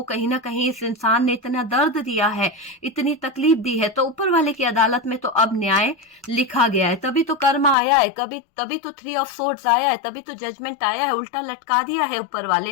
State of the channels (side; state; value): right; drops out; at 7.8 s